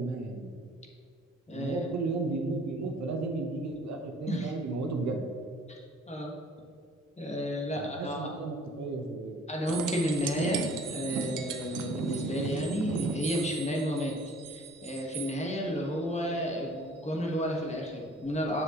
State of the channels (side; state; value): both; normal; correlation 0.53